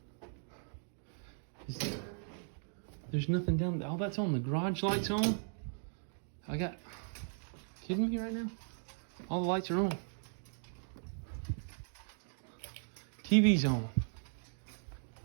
There's nothing down there. Oh, that's on. The garage lights on. Kidding me right now? All the lights are on. TV's on.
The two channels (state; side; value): silent; left; digital silence